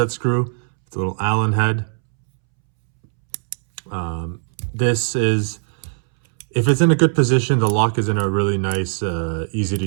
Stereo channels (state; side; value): silent; left; 66 dB below the other